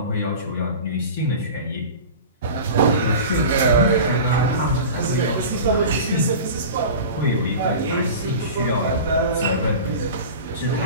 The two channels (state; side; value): inverted; both; correlation -0.34